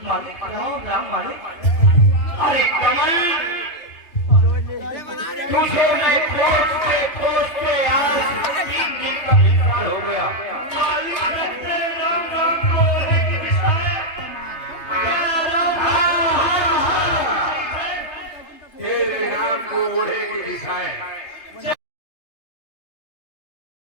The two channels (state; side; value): late; right; 3.0 ms